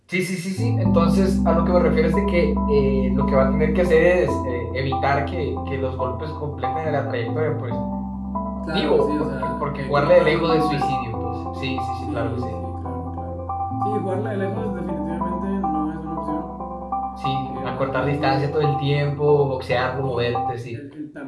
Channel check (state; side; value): identical; both; correlation 1.00